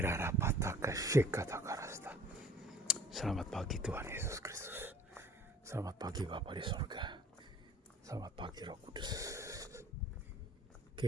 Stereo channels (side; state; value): both; normal; correlation 0.50